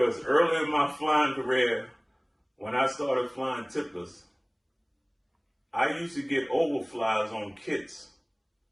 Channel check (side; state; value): both; identical; correlation 1.00